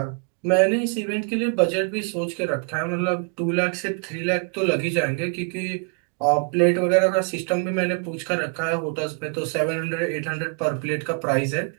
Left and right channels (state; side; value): quieter; left; 38.8 dB